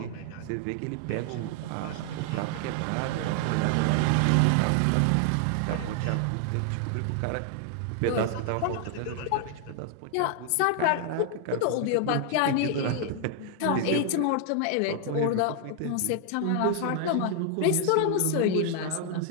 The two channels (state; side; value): different; both; correlation 0.00